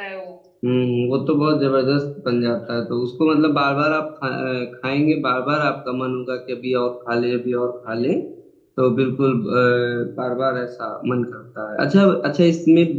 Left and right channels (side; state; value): both; identical; correlation 1.00